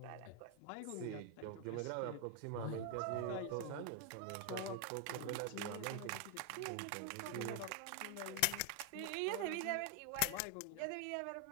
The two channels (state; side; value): different; both; correlation 0.00